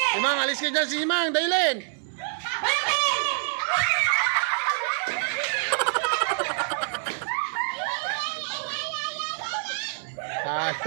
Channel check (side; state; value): left; silent; digital silence